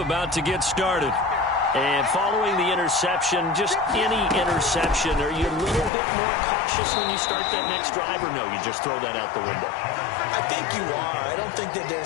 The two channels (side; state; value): right; drops out; at 5.9 s